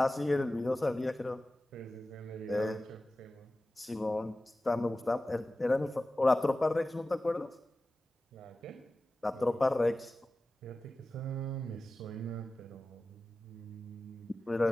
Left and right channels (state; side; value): normal; both; correlation 0.95